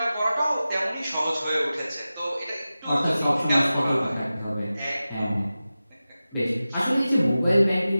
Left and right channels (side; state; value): both; inverted; correlation -0.95